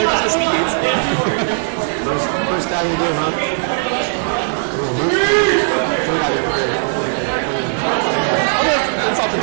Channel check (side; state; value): left; silent; digital silence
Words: goes the speed gates. First guy you do, huh? It's